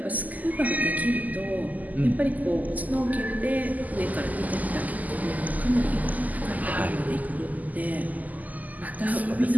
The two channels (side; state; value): left; late; 0.080 ms